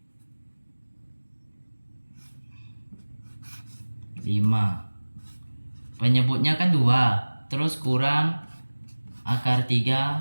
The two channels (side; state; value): both; inverted; correlation -1.00